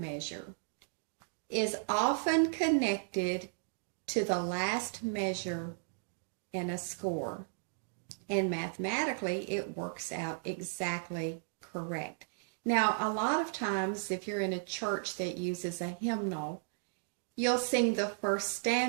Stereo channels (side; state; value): left; silent; digital silence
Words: is often connected to the last measure in a score, and mathematically it works out exactly correct. Now, a lot of times, if you're in a church that uses a hymnal, you'll sing the first